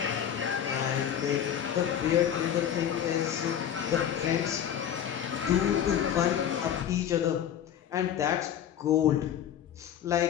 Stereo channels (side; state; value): right; quieter; 9.6 dB